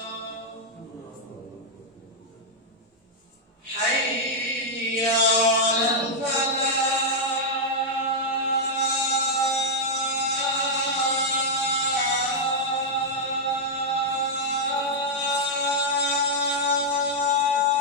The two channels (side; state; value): both; normal; correlation -0.04